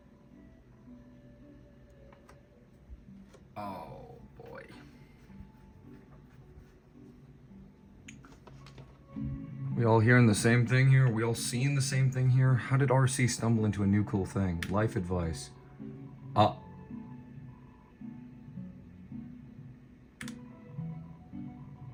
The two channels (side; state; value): both; identical; correlation 1.00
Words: Oh boy. We all hearing the same thing here? We all seeing the same thing here? How did RC stumble into a new cool thing? Life advice.